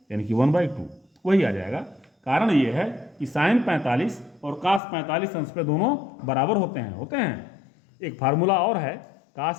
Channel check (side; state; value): right; drops out; at 4.8 s